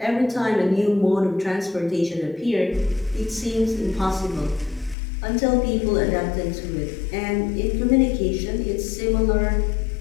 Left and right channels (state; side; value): drops out; right; at 5.0 s